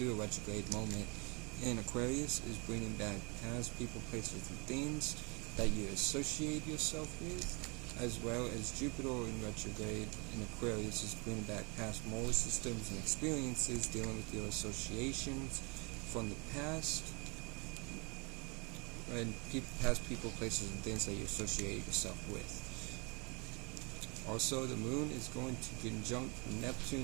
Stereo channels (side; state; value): left; quieter; 30.9 dB